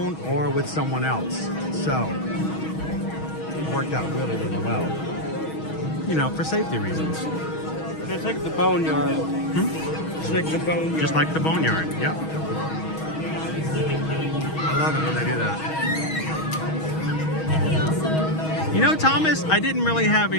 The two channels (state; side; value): late; right; 6.3 ms